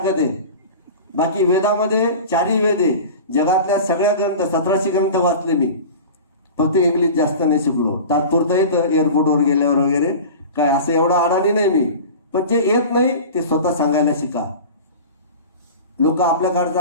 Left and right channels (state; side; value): inverted; both; correlation -0.34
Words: आहे. बाकी वेदामध्ये 4ही वेद आहे. जगातल्या सगळ्या ग्रंथ 1700 ग्रंथ वाचले मी. फक्त इंग्लिश जास्त नाही शिकलो. तात्पुरतं येतं एअरपोर्टवर गेल्यावर वगैरे, काय असं एवढं अडाणी नाही मी. पण जे येत नाही ते स्वतः सांगायला शिका. लोक